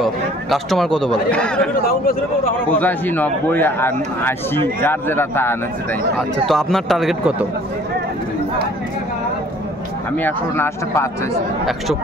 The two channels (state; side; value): normal; both; correlation 0.54